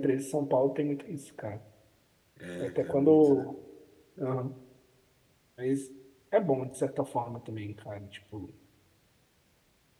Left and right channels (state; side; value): identical; both; correlation 1.00